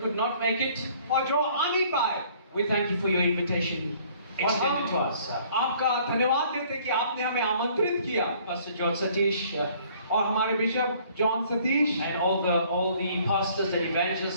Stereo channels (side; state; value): both; inverted; correlation -0.58